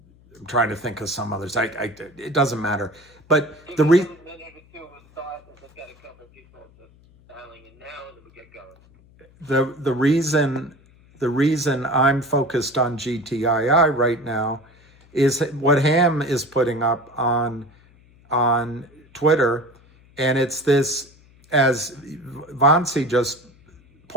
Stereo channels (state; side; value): noise; left; hum, 28 dB below the sound